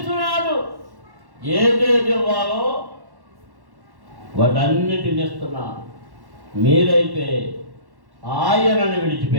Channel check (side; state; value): left; late; 1.1 ms